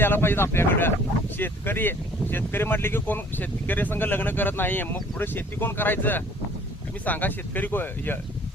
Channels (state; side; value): normal; both; correlation 0.55